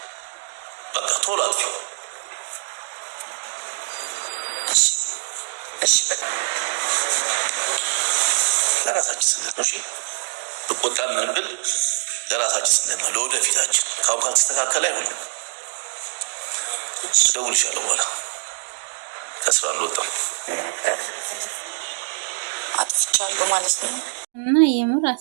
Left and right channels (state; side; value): silent; left; digital silence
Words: በቃ ቶሎ አጥፊው። ለራሳችን ስንል ነው። እሺ ብቆጣ ምን ብል ለራሳችን ስንል ነው፣ ለወደፊታችን። ካሁን ካልተስተካከለ አይሆንም። እደውልልሻለሁ በኋላ። ከስራ አልወጣም። አጥፍቻለሁ ማለት ነው። እና የምር